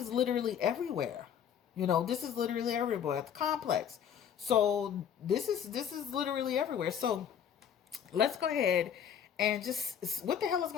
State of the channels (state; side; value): quieter; right; 8.7 dB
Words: literally everywhere. This is literally everywhere at the complex. So this is literally everywhere. So let's go ahead And just, what the hell is